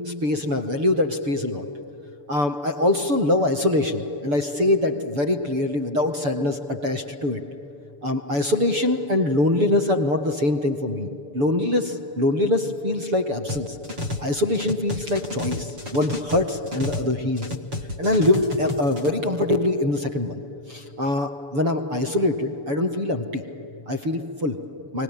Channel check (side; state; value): left; late; 6.9 ms